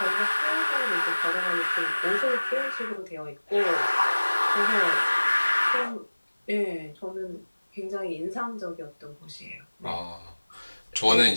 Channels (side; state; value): both; inverted; correlation -1.00